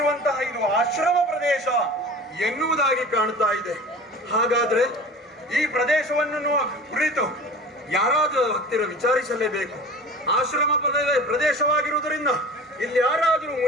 ಇದು ಆಶ್ರಮ ಪ್ರದೇಶ ಎನ್ನುವುದಾಗಿ ಕಾಣುತ್ತಾ ಇದೆ. ಹಾಗಾದ್ರೆ ಈ ಪ್ರದೇಶವನ್ನು ಕುರಿತು ಯಾರಾದರೂ ಹತ್ತಿರ ವಿಚಾರಿಸಲೇಬೇಕು. ಆಶ್ರಮ ಪ್ರದೇಶವಾಗಿರುವುದರಿಂದ ಇಲ್ಲಿ ಯಾರಾದರೂ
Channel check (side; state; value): both; normal; correlation 0.39